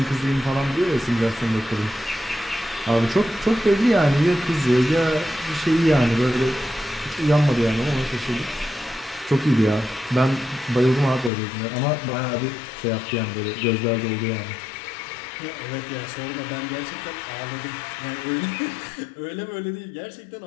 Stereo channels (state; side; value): drops out; right; at 11.3 s